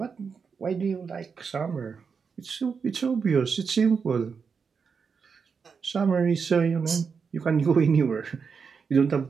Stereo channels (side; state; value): left; quieter; 5.8 dB